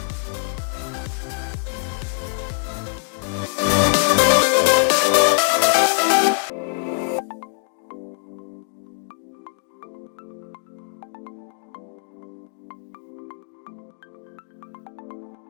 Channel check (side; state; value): right; silent; digital silence